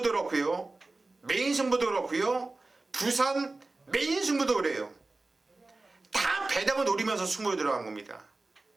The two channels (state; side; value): quieter; left; 3.3 dB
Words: 그렇고요, 메인 승부도 그렇고요, 부산 메인 승부도 그래요. 다 배당을 노리면서 승부에 들어간 겁니다.